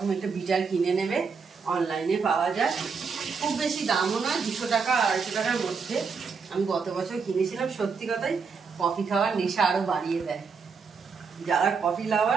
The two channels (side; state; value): left; quieter; 5.3 dB